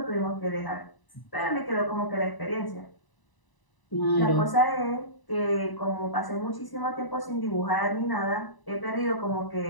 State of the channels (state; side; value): late; right; 1.0 ms